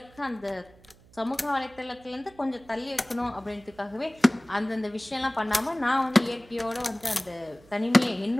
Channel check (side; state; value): right; noise; hum, 26 dB below the sound